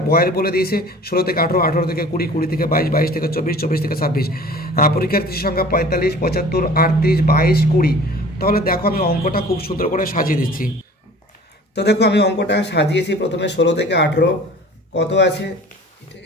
বয়ের বলে দিয়েছে 16 থেকে 18, 18 থেকে 20, 20 থেকে 22, 22 থেকে 24, 24 থেকে 26। পরীক্ষার্থীর সংখ্যা 45, 75, 38, 22, 20। তাহলে দেখো আমি অঙ্কটা খুব সুন্দর করে সাজিয়ে দিচ্ছি। তো দেখো আমি অঙ্কটা সাজিয়েছি। প্রথমে 16 থেকে 18 কত আছে,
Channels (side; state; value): both; normal; correlation 0.45